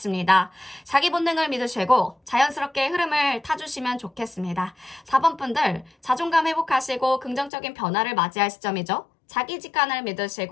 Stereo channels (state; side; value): drops out; right; at 7.5 s